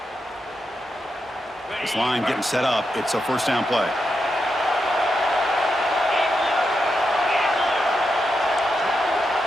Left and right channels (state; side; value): normal; both; correlation 0.86